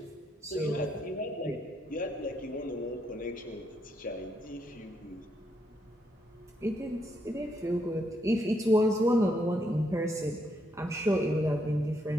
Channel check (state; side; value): normal; both; correlation 0.77